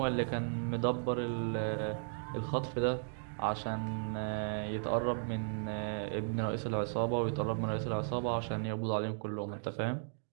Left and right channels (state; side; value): silent; left; digital silence